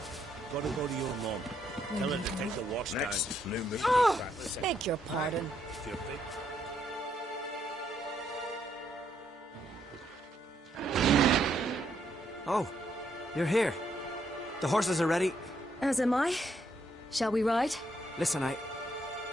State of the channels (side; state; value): both; normal; correlation 0.74